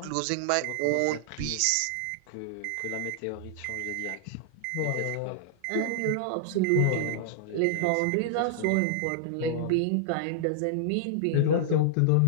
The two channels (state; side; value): different; both; correlation -0.01